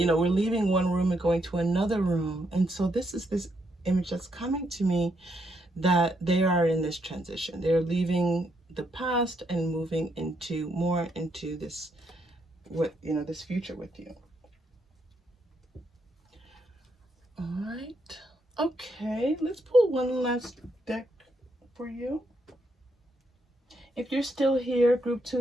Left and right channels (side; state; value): both; normal; correlation 0.77